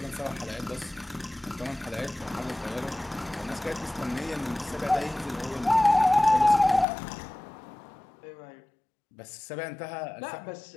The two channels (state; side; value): drops out; right; at 6.9 s